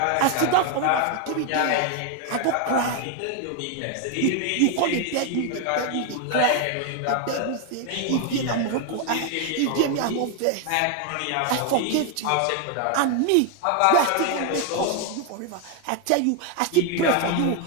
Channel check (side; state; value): both; different; correlation 0.01